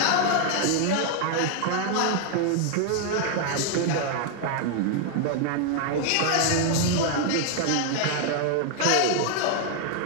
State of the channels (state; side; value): different; both; correlation 0.00